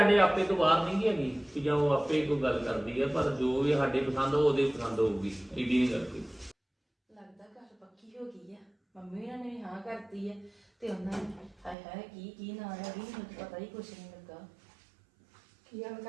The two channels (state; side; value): drops out; left; at 11.8 s